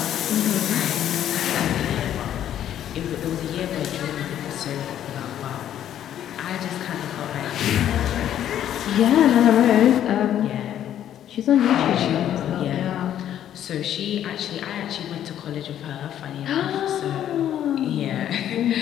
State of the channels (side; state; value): right; quieter; 10.8 dB